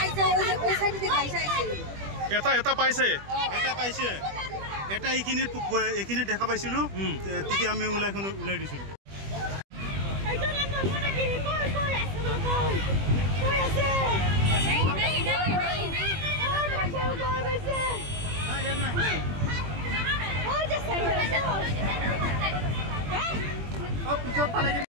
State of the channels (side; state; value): left; late; 21 ms